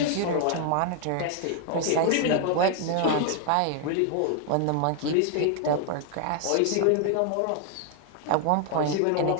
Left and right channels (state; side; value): different; both; correlation 0.00